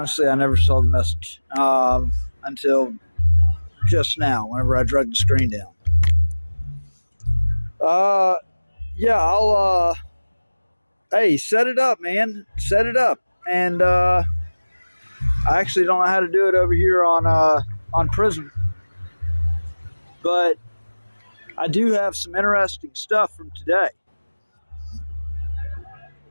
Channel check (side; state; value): both; inverted; correlation -1.00